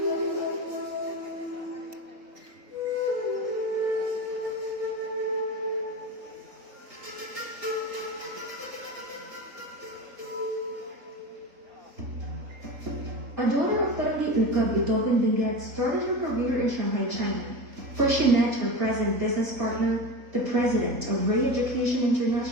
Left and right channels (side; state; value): left; late; 3.8 ms